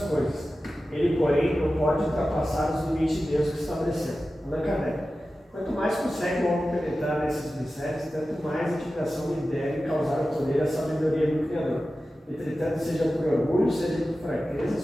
coisas. Ele, porém, não pode ultrapassar os limites de Deus que estabeleceu. Allan Kardec. Quanto mais consegue o homem penetrar nesses mistérios, tanto mais a admiração lhe deve causar ao poder a sabedoria do Criador. Entretanto, seja por orgulho, seja por fraqueza,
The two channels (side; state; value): both; normal; correlation 0.94